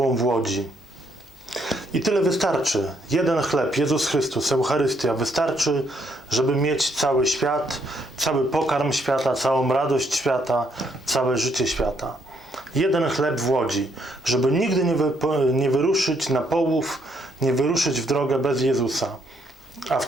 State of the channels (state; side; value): normal; both; correlation 0.72